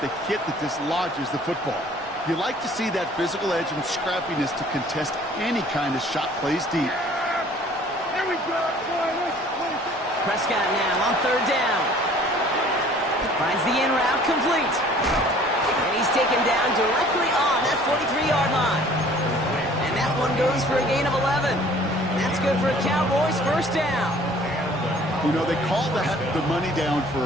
the hit that dislodges the football. You like to see that physical edge and scrappiness to contest any kind of shot plays deep. Here we go. Prescott now on 3rd down. Finds the in route complete. And he's taken down directly on that 43-yard line. And that one goes for a gain of 11. That's good for a Cowboys 1st down. You know, they call that the money down for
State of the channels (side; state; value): both; normal; correlation 0.53